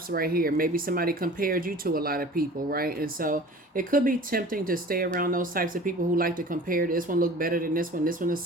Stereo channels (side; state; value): both; normal; correlation 0.43